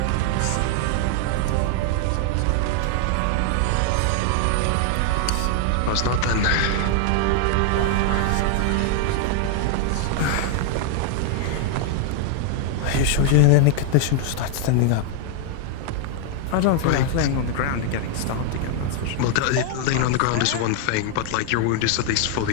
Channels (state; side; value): different; both; correlation 0.00